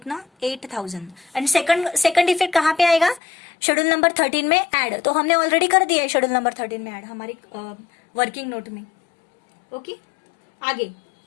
8000। एंड सेकंड इफेक्ट कहाँ पे आएगा, शेड्यूल नंबर 13 में ऐड, तो हमने ऑलरेडी कर दिया है शेड्यूल नंबर 13 में ऐड हमारी वर्किंग नोट में। ओके, आगे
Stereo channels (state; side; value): drops out; right; at 3.2 s